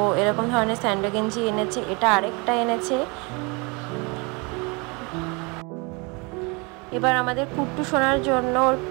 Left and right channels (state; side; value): quieter; left; 29.5 dB